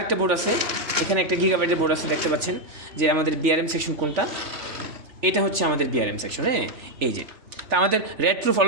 বোর্ড আছে, এখানে একটা গিগাবাইটের বোর্ড আছে, দেখতে পাচ্ছেন যে আমাদের বিআরএম সেকশন কোনটা? এটা হচ্ছে আমাদের বিআরএম সেকশন। হ্যাঁ, এই যে তা আমাদের red proof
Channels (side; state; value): left; late; 3.4 ms